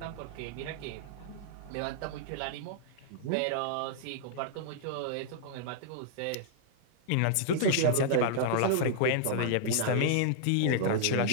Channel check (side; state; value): both; different; correlation -0.01